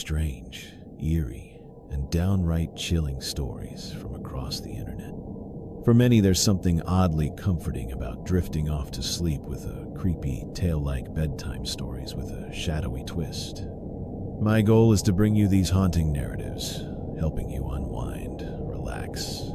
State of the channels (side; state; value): both; identical; correlation 1.00